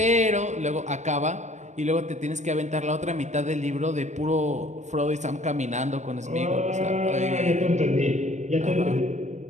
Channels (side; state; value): left; late; 0.34 ms